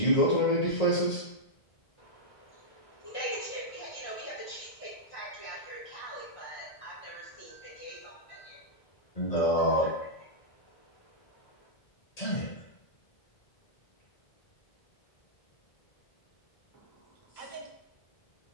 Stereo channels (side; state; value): right; late; 1.8 ms